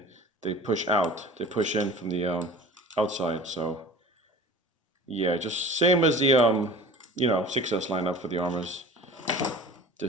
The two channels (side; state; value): both; normal; correlation 0.41